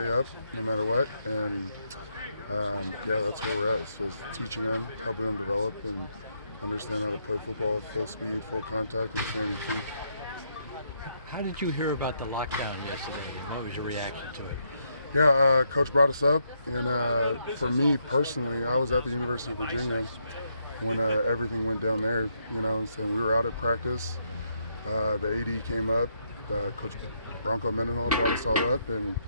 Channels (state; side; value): inverted; both; correlation -0.77